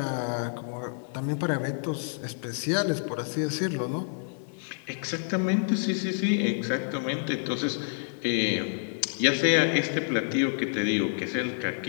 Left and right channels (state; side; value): silent; right; 58 dB below the other